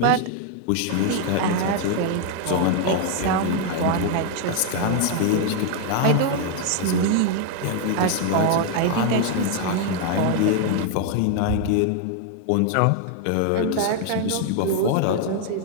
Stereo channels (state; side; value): different; both; correlation 0.00